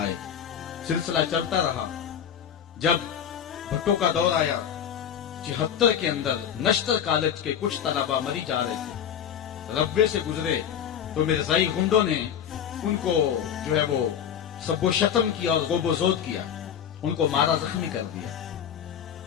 سلسلہ چلتا رہا۔ جب بھٹو کا دور آیا 76 کے اندر نشتر کالج کے کچھ طلبہ مری جا رہے تھے، ربے سے گزرے تو مرزائی گنڈوں نے ان کو جو ہے وہ سب و شتم کیا اور غوب و زود کیا، ان کو مارا زخمی کر دیا۔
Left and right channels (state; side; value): quieter; right; 8.9 dB